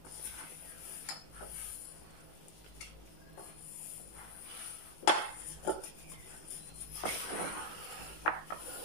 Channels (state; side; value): late; right; 18 ms